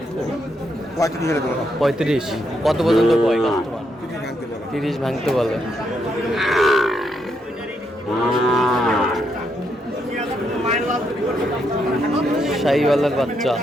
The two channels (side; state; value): both; normal; correlation 0.78